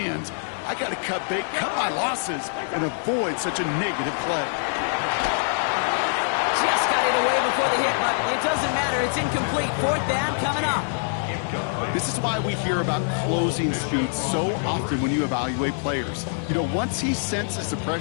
I got to cut bait, cut my losses, and avoid such a negative play. Just got it away before the hit, but it doesn't matter. It's incomplete. 4th down coming up. This is why we hear about closing speed so often when you evaluate players. You know, once he senses the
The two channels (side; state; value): right; silent; digital silence